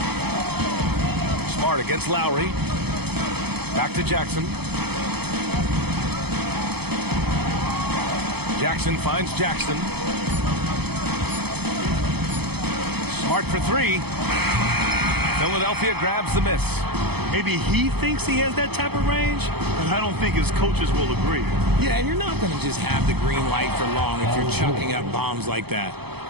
Smart against Lowry. Back to Jackson. Jackson finds Jackson. Smart for 3. Philadelphia grabs the miss. Maybe he thinks he has that type of range, but I don't think his coaches will agree. Yeah, and you're not going to just have the green light for long if you're chucking up bombs like that.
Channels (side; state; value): left; late; 0.97 ms